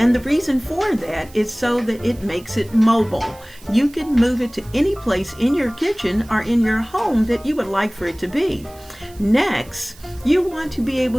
the reason for that is so that it makes it mobile. You can move it to any place in your kitchen or in your home that you would like for it to be. Next, you want to be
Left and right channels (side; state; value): right; noise; hiss, 24 dB below the sound